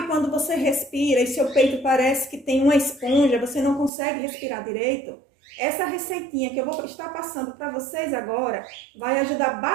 quando você respira e seu peito parece que tem uma esponja, você não consegue respirar direito? Essa receitinha que eu vou estar passando para vocês agora vai ajudar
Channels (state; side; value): drops out; left; at 3.9 s